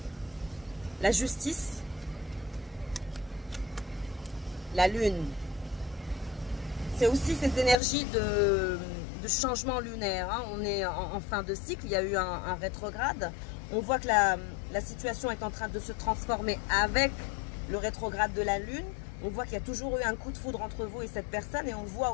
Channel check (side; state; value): right; drops out; at 7.8 s